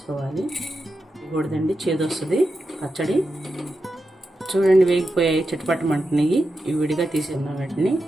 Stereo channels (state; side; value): normal; both; correlation 0.89